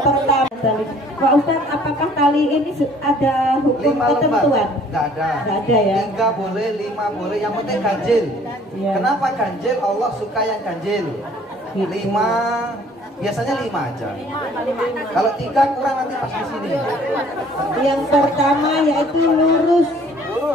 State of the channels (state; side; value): normal; both; correlation 0.56